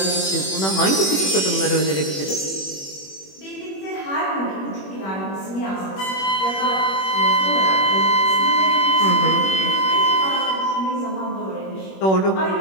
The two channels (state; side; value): late; right; 21 ms